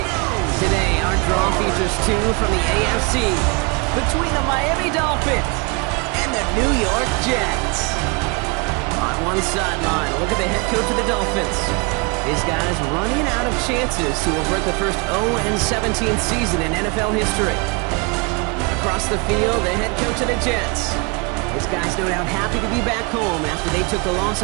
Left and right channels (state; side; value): quieter; left; 30.7 dB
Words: Today, our draw features two from the AFC between the Miami Dolphins and the New York Jets. On one sideline, look at the head coach of the Dolphins. His guys running out of chances to avert the first 0-17 season in NFL history. Across the field, the head coach of the Jets. His guys no doubt happy to be back home after they took the loss